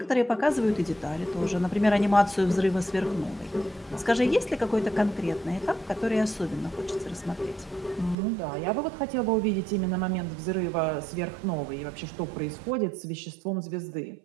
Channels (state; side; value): drops out; left; at 8.2 s